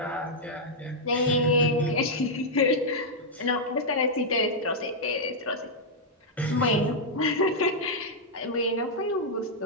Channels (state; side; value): normal; both; correlation -0.05